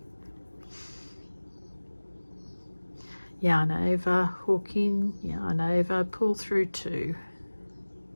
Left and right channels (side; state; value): both; inverted; correlation -1.00